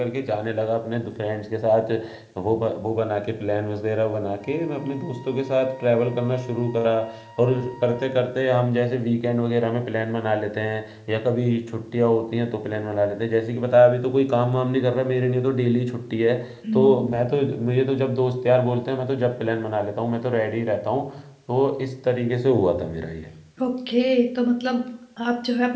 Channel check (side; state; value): both; identical; correlation 1.00